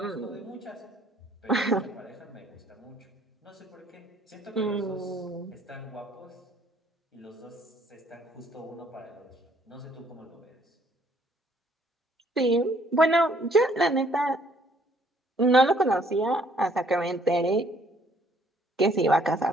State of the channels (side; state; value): both; normal; correlation 0.63